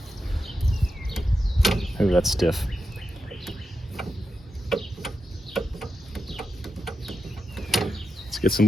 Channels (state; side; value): normal; both; correlation 0.87